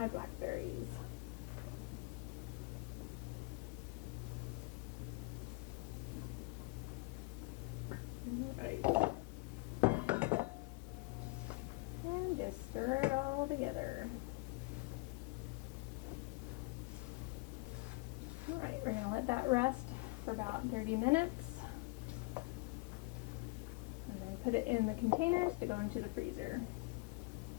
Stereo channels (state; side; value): quieter; right; 27.5 dB